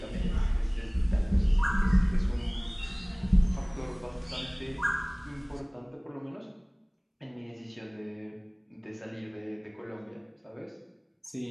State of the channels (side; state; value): both; identical; correlation 1.00